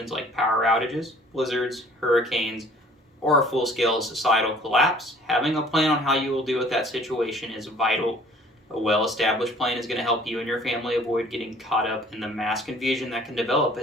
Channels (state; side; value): normal; both; correlation 0.53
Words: like power outages, blizzards, hurricanes, or a full-scale societal collapse, having a plan on how you will deal with that situation is vital. A well-established plan is going to help you and your family avoid getting caught up in the mass confusion that can develop